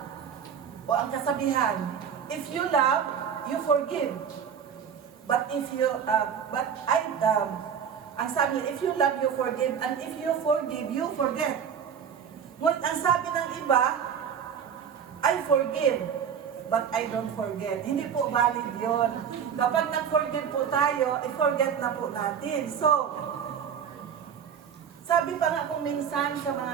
o ang kasabihan, if you love, you forgive. But if you, ang sabi, if you love, you forgive, and if you forgive, you forget. Ngunit ang sabi ng iba, I forgive, but I don't forget. Hindi po valid yun. Kapag nag-forgive po tayo, i-forget na po natin. So, sabi pa nga kung minsan sa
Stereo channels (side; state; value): left; quieter; 7.7 dB